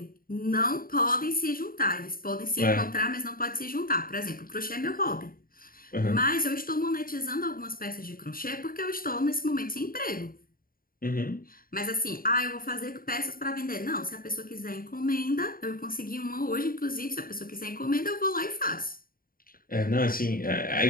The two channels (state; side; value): late; right; 0.42 ms